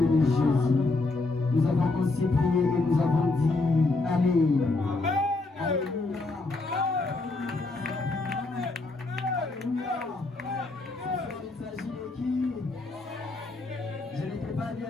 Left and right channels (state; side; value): quieter; right; 3.3 dB